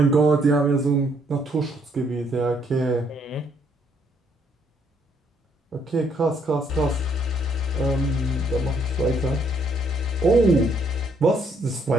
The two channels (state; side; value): normal; both; correlation 0.69